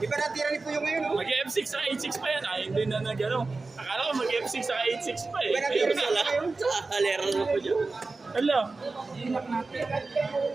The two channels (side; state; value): left; quieter; 3.7 dB